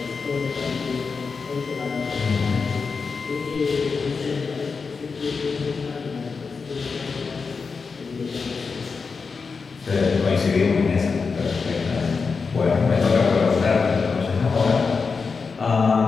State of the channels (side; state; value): right; quieter; 5.0 dB